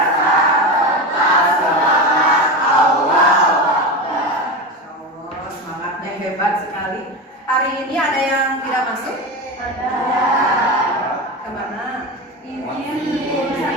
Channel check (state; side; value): normal; both; correlation 0.22